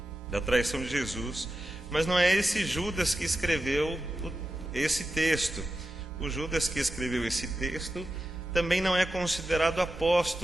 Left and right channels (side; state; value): both; normal; correlation 0.91